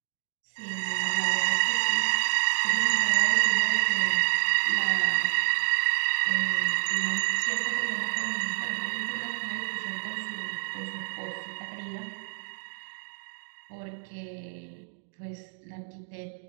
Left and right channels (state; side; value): silent; left; digital silence